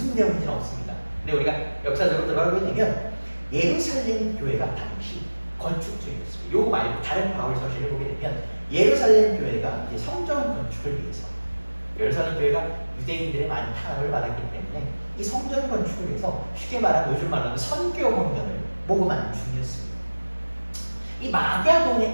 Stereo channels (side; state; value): both; inverted; correlation -1.00